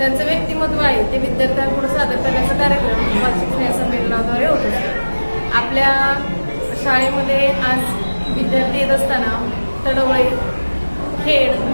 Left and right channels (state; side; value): inverted; both; correlation -1.00